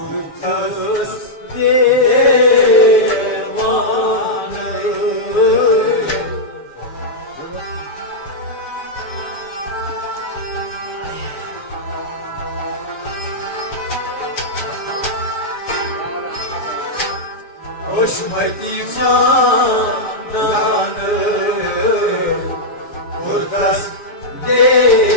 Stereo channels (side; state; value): right; late; 7.0 ms